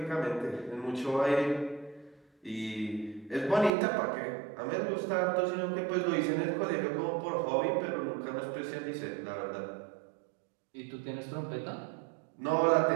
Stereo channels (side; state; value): left; drops out; at 3.7 s